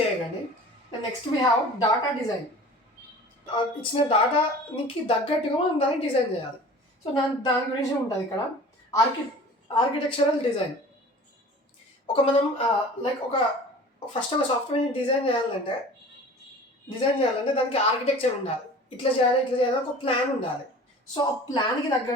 అయ్యకండి. Next we have data design. ఇచ్చిన డాటాకి తగ్గట్టుగా మనం దాన్ని డిజైన్ చేయాలి. సో దాని గురించి ఉంటుంది ఇక్కడ. Architectural design. మనం లైక్ ఫస్ట్ ఒక సాఫ్ట్వేర్ని డిజైన్ చేయాలంటే దానికి ఆర్కిటెక్చర్ ఉండాలి. ఇట్లా చేయాలి ఒక ప్లాన్ ఉండాలి. సో ఆ ప్లాన్కి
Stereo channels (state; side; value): normal; both; correlation 0.42